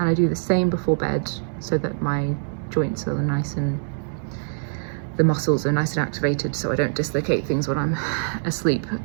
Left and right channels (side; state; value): left; silent; digital silence